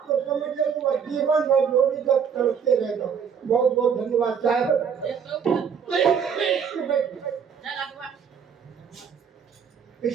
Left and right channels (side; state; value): left; quieter; 7.0 dB